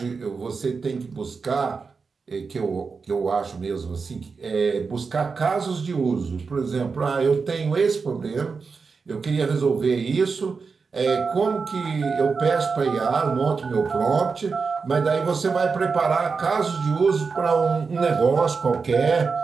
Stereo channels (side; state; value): left; quieter; 4.9 dB